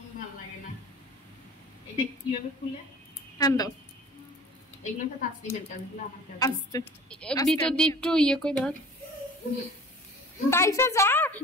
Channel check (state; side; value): normal; both; correlation 0.44